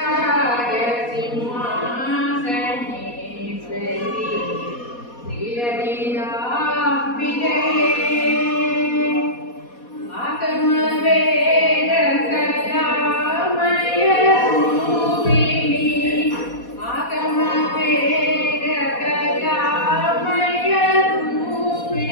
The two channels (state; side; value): late; right; 4.2 ms